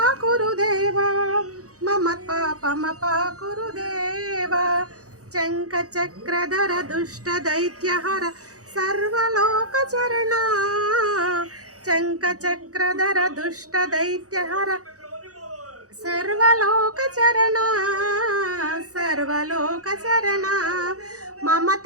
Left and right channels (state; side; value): late; left; 0.66 ms